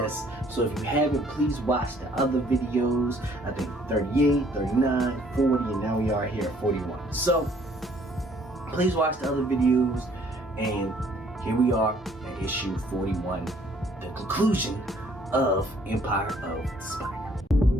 So if you haven't, please watch the other videos. I think 38, 39, 40, and now we are here at 41. So please watch the other videos, and here we are at issue 41. The conclusion of Empire of the Spider.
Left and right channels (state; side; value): normal; both; correlation 0.61